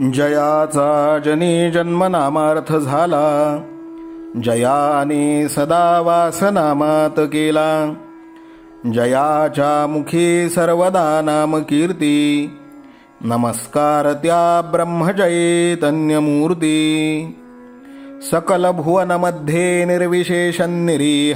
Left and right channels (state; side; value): identical; both; correlation 1.00